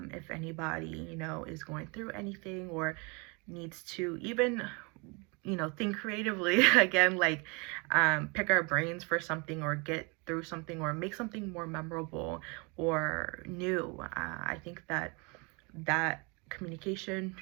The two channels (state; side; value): quieter; left; 30.5 dB